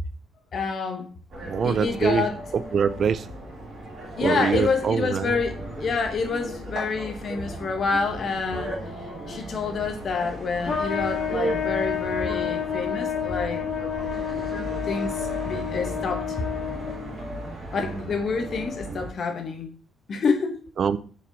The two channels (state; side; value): normal; both; correlation 0.70